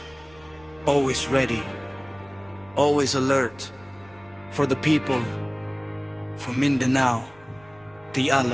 Always ready, always alert. For the people, for Mindanao, the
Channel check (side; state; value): right; noise; rumble, 28 dB below the sound